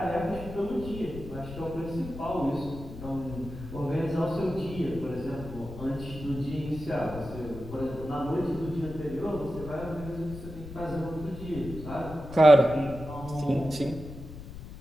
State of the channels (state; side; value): noise; left; rumble, 12 dB below the sound